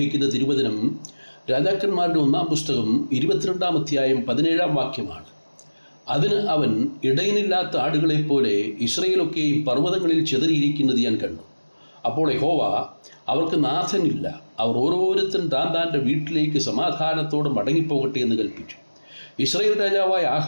തിരുവചനം രാജാക്കന്മാരുടെ 1-ാം പുസ്തകം 22-ാം അധ്യായം 17-ാം വാക്യമാണ്. അതിന് അവൻ, ഇടയനില്ലാത്ത ആടുകളെപ്പോലെ ഇസ്രയേലൊക്കെയും പർവ്വതങ്ങളിൽ ചിതറിയിരിക്കുന്നത് ഞാൻ കണ്ടു. അപ്പോൾ യഹോവ, അവർക്ക് നാഥനില്ല, അവർ ഓരോരുത്തൻ താൻ്റെ വീട്ടിലേക്ക് സമാധാനത്തോടെ മടങ്ങിപ്പോകട്ടെ എന്ന് കൽപ്പിച്ചു. ഇസ്രായേൽ രാജാവായ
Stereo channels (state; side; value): inverted; both; correlation -1.00